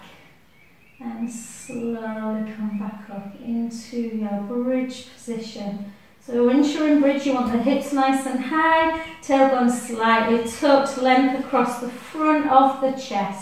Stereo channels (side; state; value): both; identical; correlation 1.00